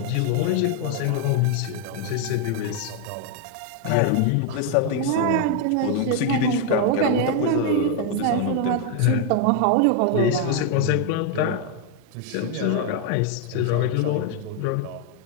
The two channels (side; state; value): both; different; correlation 0.01